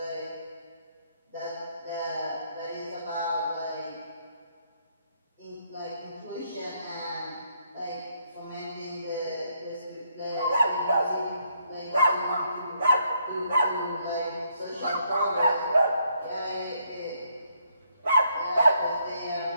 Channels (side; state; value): both; inverted; correlation -0.73